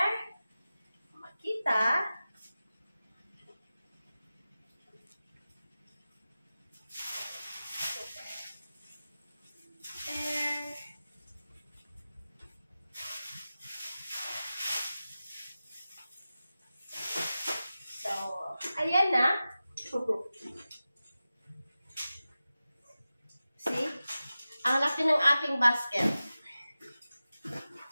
Makita. There. So, ayan na. See? Ang laki ng aking basket.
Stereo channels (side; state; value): both; inverted; correlation -0.95